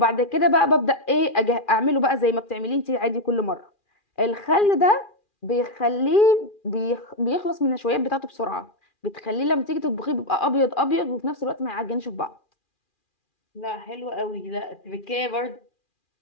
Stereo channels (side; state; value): right; late; 2.4 ms